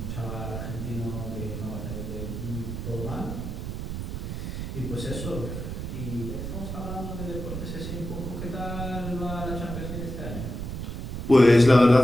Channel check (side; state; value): right; noise; rumble, 5 dB below the sound